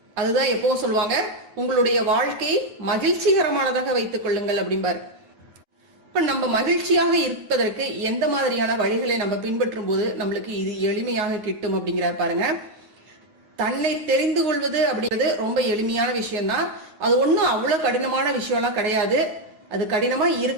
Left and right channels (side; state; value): left; late; 9.5 ms